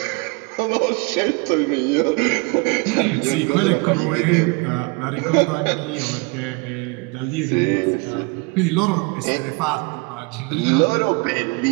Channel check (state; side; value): quieter; left; 29.0 dB